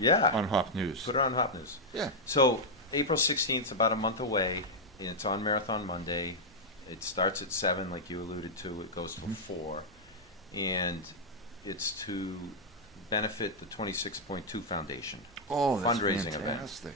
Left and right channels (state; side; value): normal; both; correlation -0.03